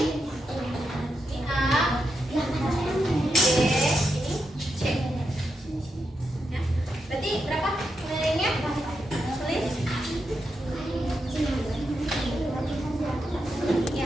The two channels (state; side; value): normal; both; correlation 0.85